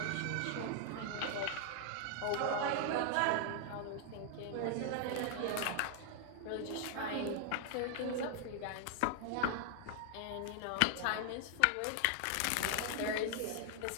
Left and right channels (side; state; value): both; different; correlation 0.00